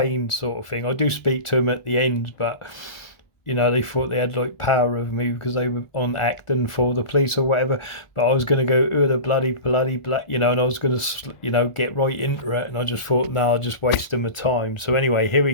sort of thing. I do speak to them at the end, but, you know, they thought they had like power over me because they were on acting for the police or whatever. But I was going to go, oh, the bloody, you know, and I was going to, you know, get right into it. And I just thought, no, I'll just waste my time. So anyway, here we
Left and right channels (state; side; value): late; right; 1.4 ms